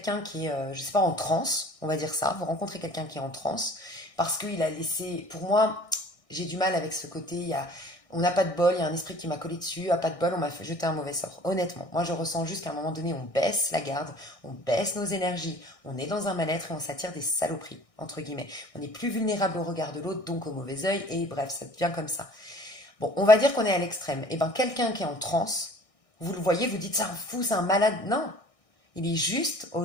qui est, je sais pas, en transe, on va dire ça, vous rencontrez quelqu'un qui est en transe, parce qu'il a laissé, pour moi, j'ai du mal avec ce côté, on n'a pas de bol, il y a un esprit qui m'a collé dessus, pas de bol, on m'a fait jeter un mauvais sort. Honnêtement, moi je ressens juste qu'à un moment donné, on baisse la garde, on baisse nos énergies, on est dans un mal-être et on s'attire des saloperies, entre guillemets. On est plus vulnérable au regard de l'autre, donc au mauvais œil, et bref, ça devient comme ça. Bon, on va dire qu'on est à l'extrême. Et bien quelqu'un qui est en transe, vous le voyez, vous dites, c'est un fou, c'est un malade. Non, il est juste,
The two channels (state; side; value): late; right; 1.6 ms